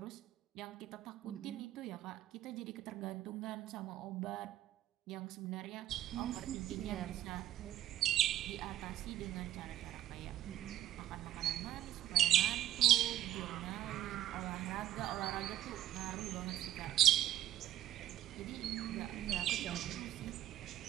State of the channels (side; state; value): left; quieter; 12.8 dB